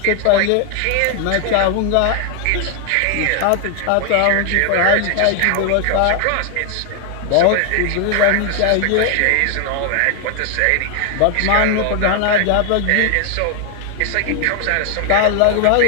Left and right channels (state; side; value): different; both; correlation 0.00